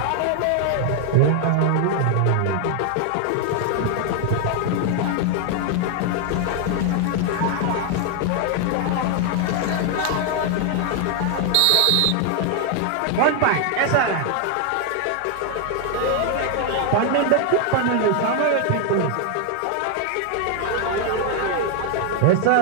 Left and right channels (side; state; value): both; different; correlation 0.00